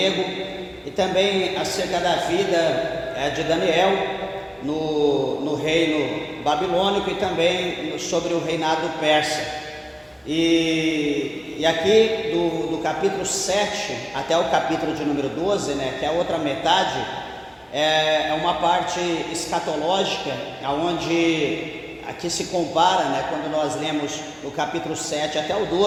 e também acerca da vida de Daniel no reino babilônico e também sobre o reinado persa. E aqui do capítulo 7 até o capítulo de número 12, né, que é a outra metade, é uma parte escatológica, onde aqui se compara, né, quando nós lemos no capítulo 7 até o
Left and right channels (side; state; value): both; identical; correlation 1.00